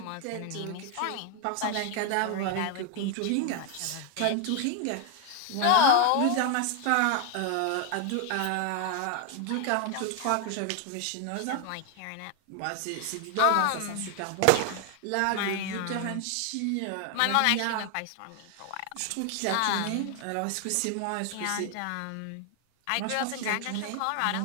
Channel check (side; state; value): both; different; correlation 0.01